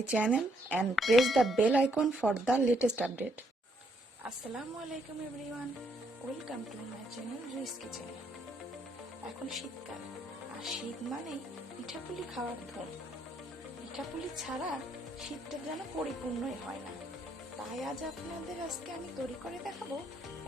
channel and press the bell icon for the latest update. Assalamualaikum everyone. Welcome to my channel Rui's Kitchen. এখন শীতকাল আর শীত মানে পিঠাপুলি খাওয়ার ধুম। পিঠাপুলি ছাড়া শীতটা যেন পরিপূর্ণই হয় না। তাই আজ আপনাদের আজকে আমি তৈরি করে দেখাবো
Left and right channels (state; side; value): normal; both; correlation 0.72